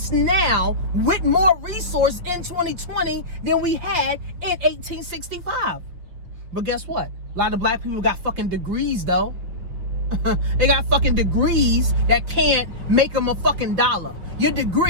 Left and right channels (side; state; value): left; late; 6.1 ms